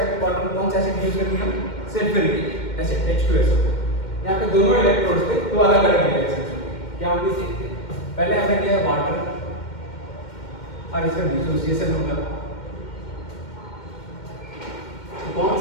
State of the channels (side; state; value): right; late; 2.1 ms